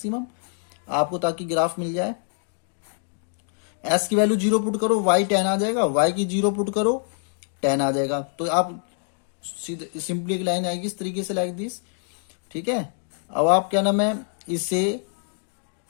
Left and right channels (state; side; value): silent; right; 58 dB below the other